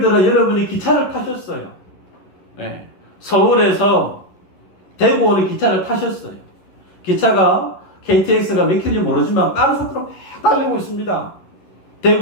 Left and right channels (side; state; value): right; late; 11 ms